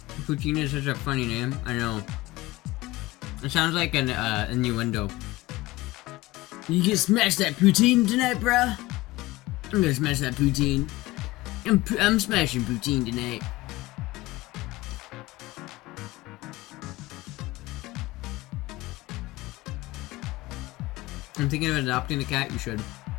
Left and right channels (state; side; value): quieter; right; 19.5 dB